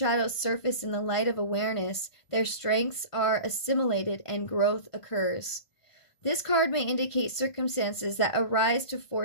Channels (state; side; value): late; right; 1.5 ms